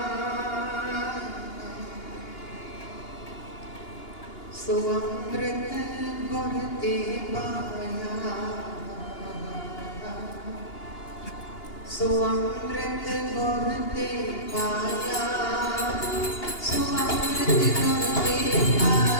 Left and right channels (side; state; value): right; late; 2.8 ms